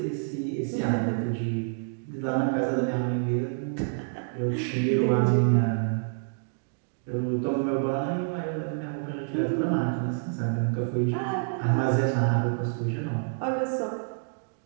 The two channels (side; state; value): left; silent; digital silence